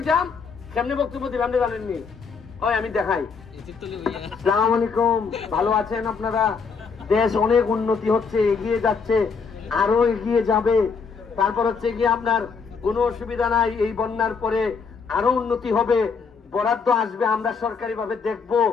যাম কেমনে বক্তব্য দিলাম জানেননি? ওই আমি দেখাই। আসসালামু আলাইকুম, ভালো আছেন আপনারা? দেশ অনেক উন্নতি হচ্ছে, এগিয়ে যাচ্ছে, আরো এগিয়ে যাবে। তারপর হচ্ছে গিয়ে আপনার কোনো অসুবিধা নাই, এই বন্যার পরে আরো উন্নতি হবে, বরাদ্দ আসবে, আমরা সরকারি ভাবে দেখবো,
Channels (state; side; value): quieter; right; 5.4 dB